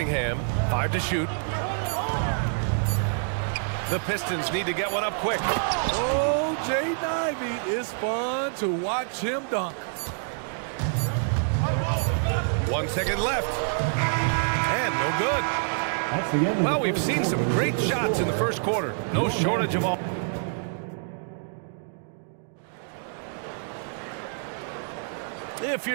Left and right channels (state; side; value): silent; left; 60 dB below the other